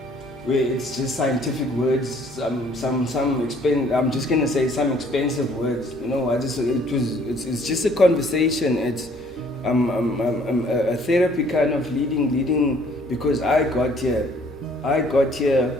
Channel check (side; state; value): both; normal; correlation 0.60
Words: it's just scientific words, I'm just gonna say some expensive words. It's just a conversation. It's a therapy kind of leading, because I got here